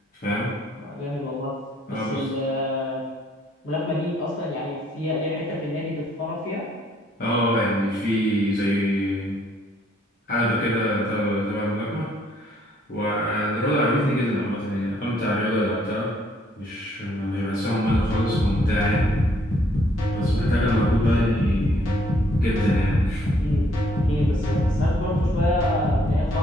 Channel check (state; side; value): normal; both; correlation 0.66